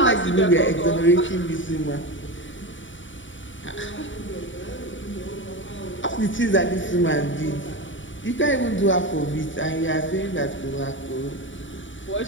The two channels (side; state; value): right; late; 0.55 ms